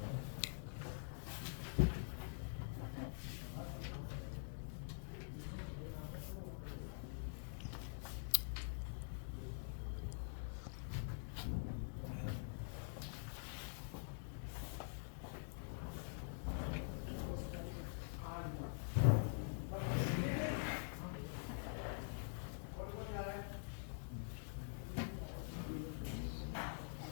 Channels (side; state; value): right; silent; digital silence